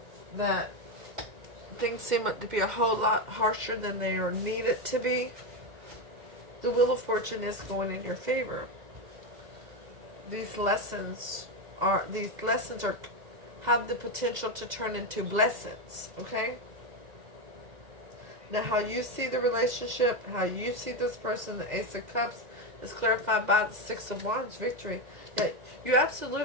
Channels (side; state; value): left; late; 2.0 ms